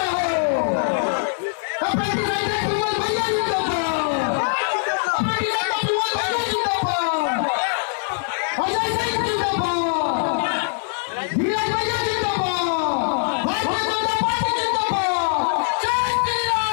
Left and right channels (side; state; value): right; silent; digital silence